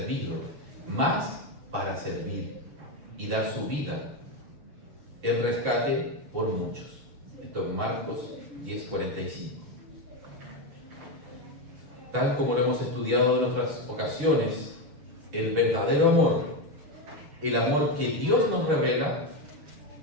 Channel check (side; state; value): left; late; 6.8 ms